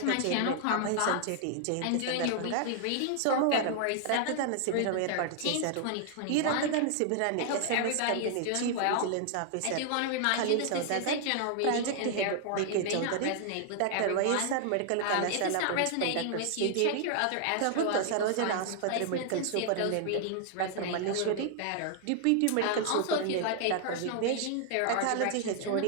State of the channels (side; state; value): both; different; correlation 0.00